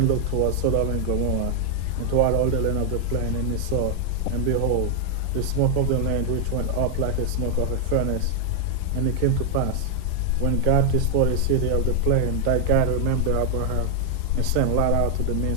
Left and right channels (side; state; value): both; different; correlation 0.00